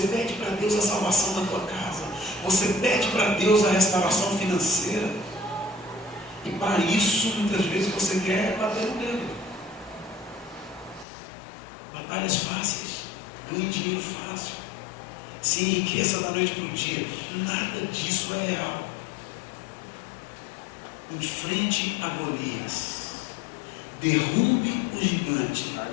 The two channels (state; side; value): drops out; right; at 11.1 s